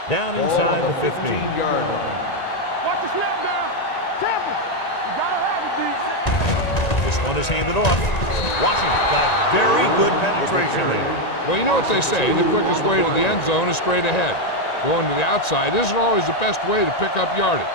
Down inside the 15. Watch the snap down. Careful. You gotta have it, D. This one is handed off. Washington got very good penetration there. Well, you know what they say, the quickest way to the end zone is straight ahead. Going to the outside isn't always the best way to pick up yardage.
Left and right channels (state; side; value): late; right; 1.9 ms